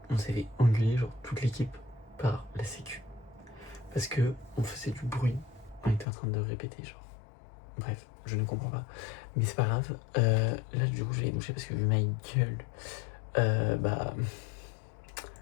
on s'est fait engueuler genre toute l'équipe par la sécu. Parce que on faisait du bruit, on était en train de répéter genre. Bref, je ne comprends pas. Mais c'est pas grave. Là du coup je vais bouger parce que vu ma gueule,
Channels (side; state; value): right; drops out; at 6.1 s